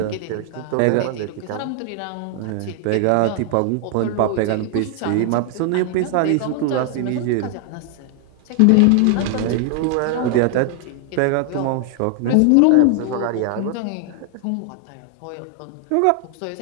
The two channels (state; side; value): different; both; correlation 0.00